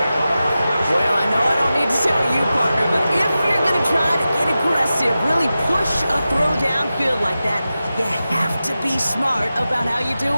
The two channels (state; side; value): inverted; both; correlation -0.93